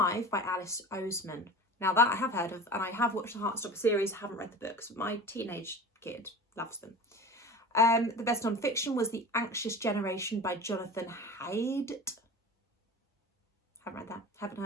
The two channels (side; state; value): both; normal; correlation 0.35